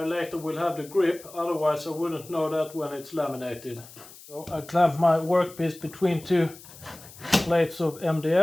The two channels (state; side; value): noise; left; hiss, 19 dB below the sound